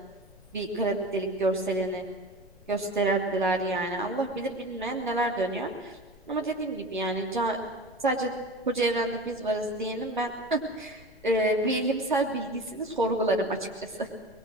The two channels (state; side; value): noise; left; rumble, 26 dB below the sound